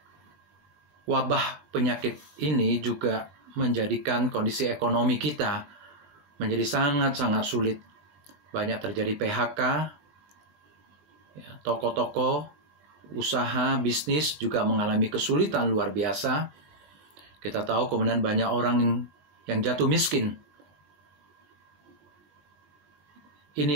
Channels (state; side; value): late; left; 20 ms